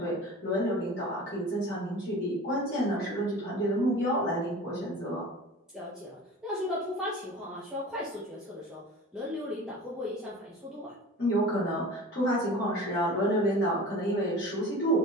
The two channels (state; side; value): normal; both; correlation 0.38